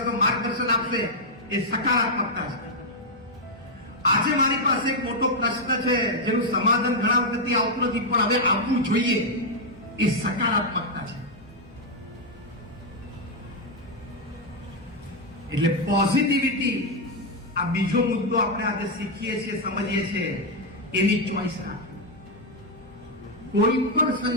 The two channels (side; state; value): both; normal; correlation 0.00